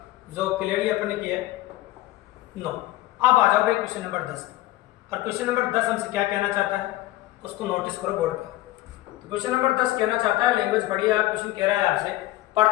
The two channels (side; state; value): right; quieter; 16.5 dB